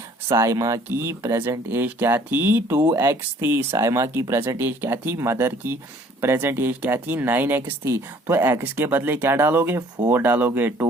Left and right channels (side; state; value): both; normal; correlation 0.56